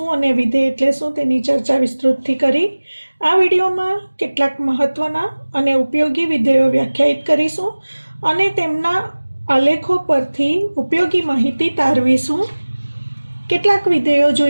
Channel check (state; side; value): inverted; both; correlation -1.00